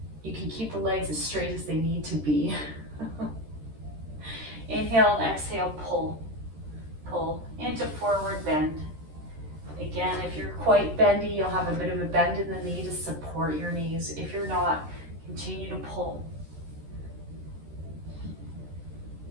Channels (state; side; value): late; left; 13 ms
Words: you can keep the legs as straight as they need to be. Inhale and exhale, pull. Pull into forward bend. Again, if you're quite bendy, you'll have a bit of a bend in the knee to support your knees. If you're not, continue to pull.